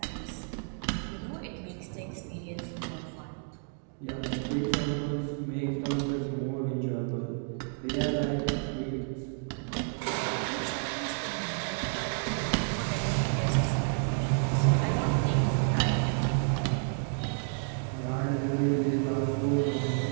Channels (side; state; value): left; silent; 57 dB below the other